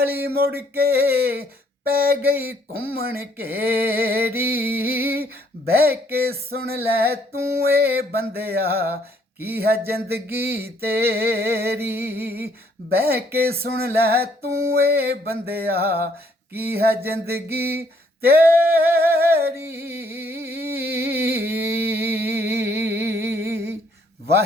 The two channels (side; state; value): both; normal; correlation 0.66